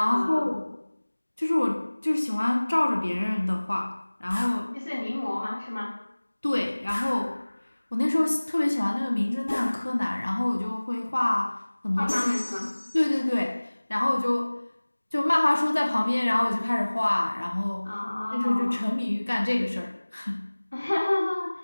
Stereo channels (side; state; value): both; inverted; correlation -1.00